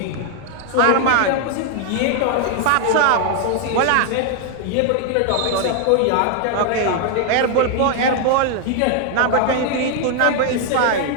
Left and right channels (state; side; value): different; both; correlation 0.00